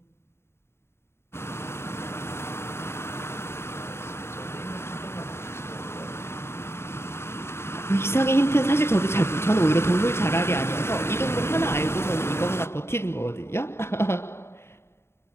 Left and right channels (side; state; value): right; late; 0.12 ms